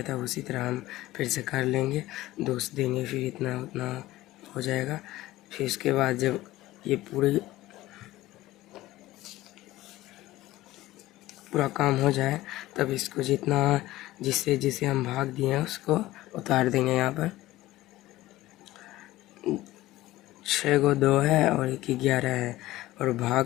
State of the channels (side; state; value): right; quieter; 16.8 dB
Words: था उसी तरह हम फिर से कर लेंगे। 2 से देंगे, फिर इतना उतना हो जाएगा। फिर उसके बाद जब ये पूरा काम हो जाए तब इसको जिससे जिसे हम भाग दिए हैं उसको उतार देंगे। यहाँ पर 6 को 2 है और 1 11 है, और